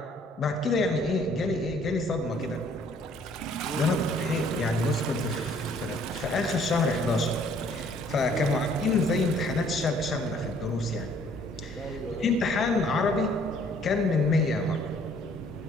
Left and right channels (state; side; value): normal; both; correlation 0.60